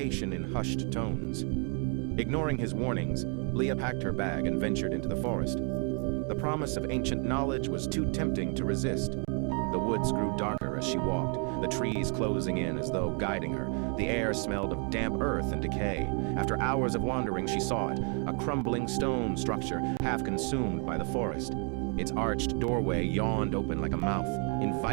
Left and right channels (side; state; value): left; quieter; 38.9 dB